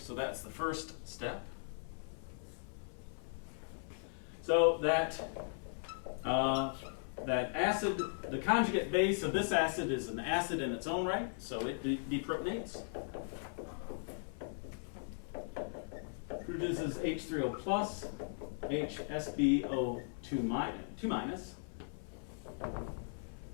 that's the first step. So that acid, the conjugate base of this acid is an acid in its own right, so it deprotonates. Produces H3O plus, HSbO2 minus.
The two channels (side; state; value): right; silent; 52 dB below the other